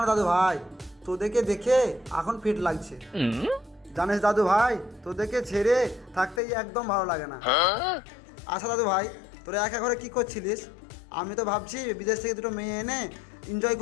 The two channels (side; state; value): right; drops out; at 6.4 s